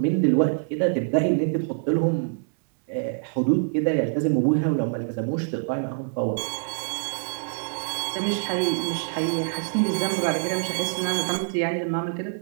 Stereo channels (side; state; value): left; silent; digital silence